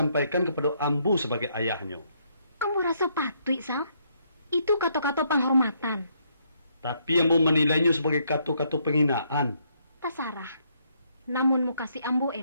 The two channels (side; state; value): both; inverted; correlation -0.72